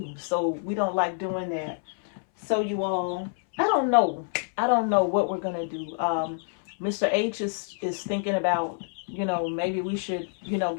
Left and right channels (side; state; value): right; silent; 60 dB below the other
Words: so we don't like doing that. So you all, I don't know what we're gonna do. Mr. H is thinking about, you know, maybe we should, you know,